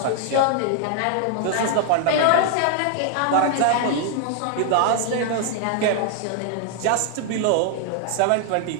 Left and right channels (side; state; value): both; different; correlation 0.00